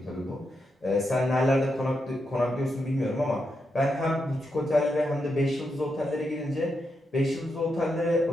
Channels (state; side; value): normal; both; correlation 0.84